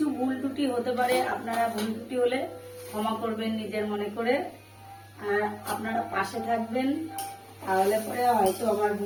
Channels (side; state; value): both; identical; correlation 1.00